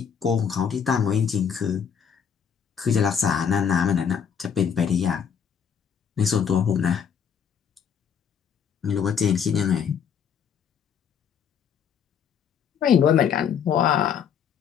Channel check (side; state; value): right; quieter; 7.4 dB